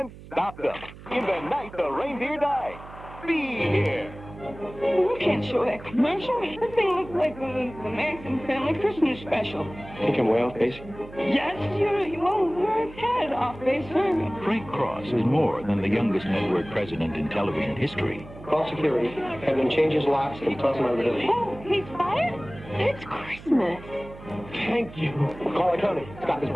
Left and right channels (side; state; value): right; noise; hum, 17 dB below the sound